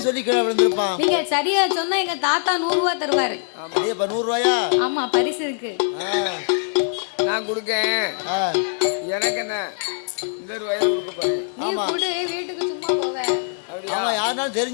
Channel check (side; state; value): right; silent; 56 dB below the other